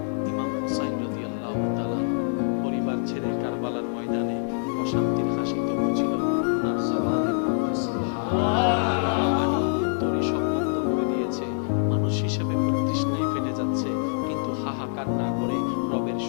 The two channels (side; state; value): right; silent; digital silence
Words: ইমাম হুসাইন রাদিয়াল্লাহু তাআলা পরিবার ছেড়ে কারবালার ময়দানে প্রশান্তির হাসি তো ছিল ওনার জবানে সুবহানাল্লাহ তরি সব বন্ধ করে দিয়েছে মানুষ হিসেবে প্রতিষ্ঠায় ফেটে যাচ্ছে হাহাকার না করে রবের